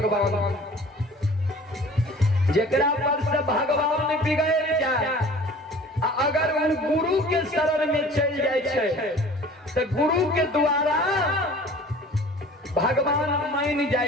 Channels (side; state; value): both; normal; correlation 0.46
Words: जेकरा पर से भगवान बिगड़ जाए अगर उन गुरु के शरण में चल जाए छे तो गुरु के द्वारा भगवान मान